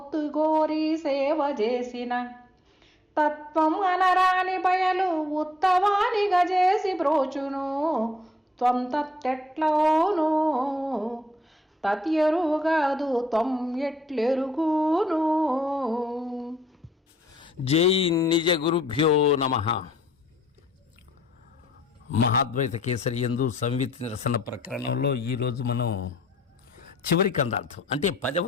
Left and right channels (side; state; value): both; normal; correlation 0.67